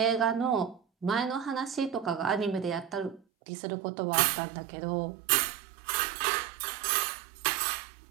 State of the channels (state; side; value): drops out; left; at 3.2 s